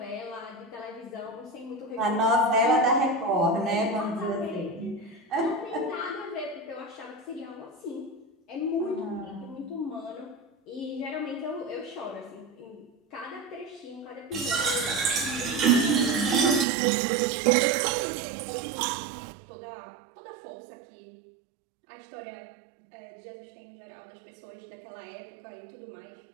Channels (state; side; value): drops out; left; at 16.7 s